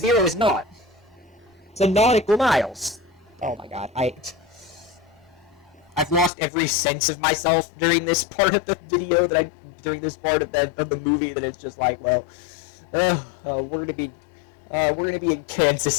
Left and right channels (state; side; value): drops out; right; at 6.3 s